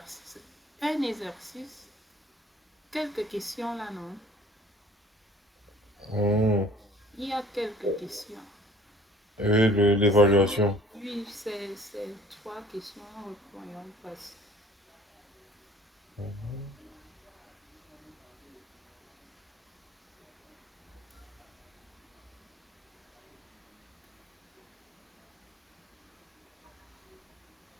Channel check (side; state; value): both; normal; correlation 0.52